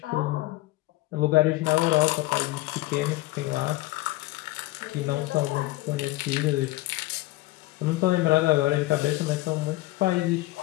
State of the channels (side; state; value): right; quieter; 18.7 dB